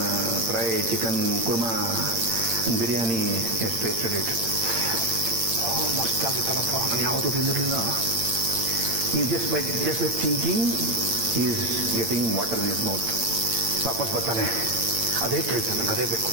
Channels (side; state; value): left; late; 8.7 ms